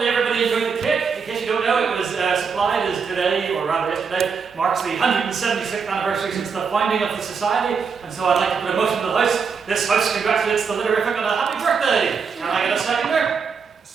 everybody enjoyed the cake. In case you don't know, it was supplied as today, or rather yesterday, marks the 176th anniversary since the founding of the Society. And so I'd like to put a motion to the House. This House congratulates the Litterific on a happy birthday. Can I get a seconder?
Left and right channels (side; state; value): left; quieter; 5.8 dB